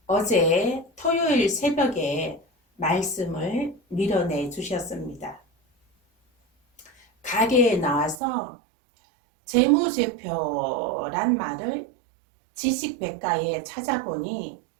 어제 토요일 새벽에 말씀을 밀어내 주셨습니다. 가게에 나와서 재무제표란 말을 지식백과에 찾아보니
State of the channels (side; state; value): left; drops out; at 8.2 s